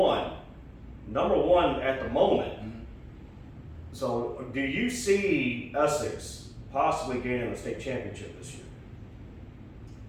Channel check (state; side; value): identical; both; correlation 1.00